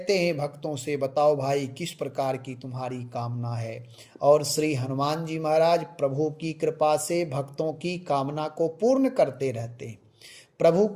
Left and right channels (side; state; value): both; identical; correlation 1.00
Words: हैं भक्तों से बताओ भाई किस प्रकार की तुम्हारी कामना है, और श्री हनुमान जी महाराज प्रभु की कृपा से भक्तों की कामना को पूर्ण करते रहते हैं, प्रभु